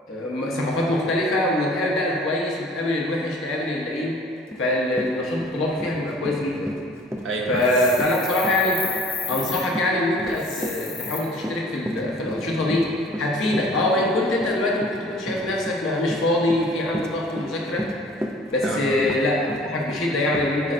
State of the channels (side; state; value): both; normal; correlation 0.50